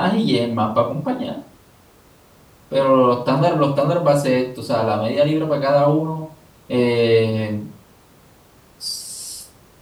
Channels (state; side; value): identical; both; correlation 1.00